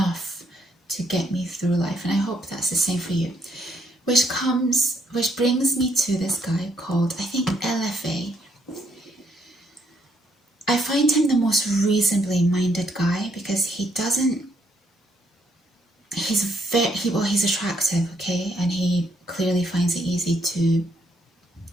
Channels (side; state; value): both; normal; correlation 0.72